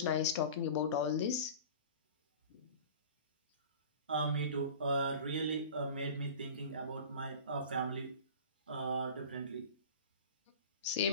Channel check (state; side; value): inverted; both; correlation -0.38